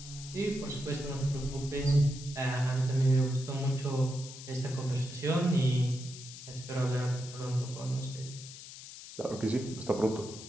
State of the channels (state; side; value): noise; left; hiss, 13 dB below the sound